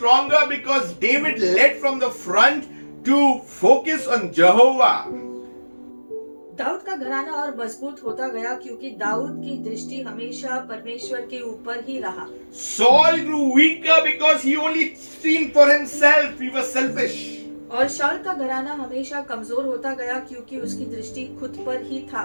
because David led from the front to focus on Jehovah. Dawood का घराना और मजबूत होता गया क्योंकि दाऊद की दृष्टि हमेशा परमेश्वर के ऊपर ही रहा. Saul grew weaker because he only seen for himself. He was selfish. और शाऊल का घराना हमेशा कमजोर होता गया क्योंकि उसकी दृष्टि खुद पर ही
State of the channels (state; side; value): inverted; both; correlation -1.00